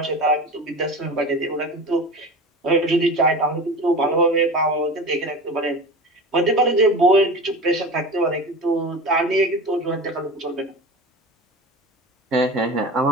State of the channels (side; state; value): both; normal; correlation 0.32